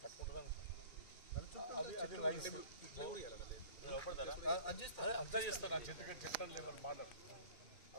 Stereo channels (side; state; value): right; late; 2.3 ms